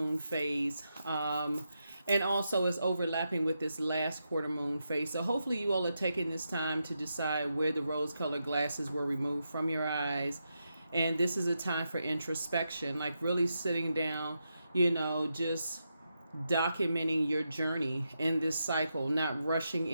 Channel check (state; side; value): inverted; both; correlation -0.85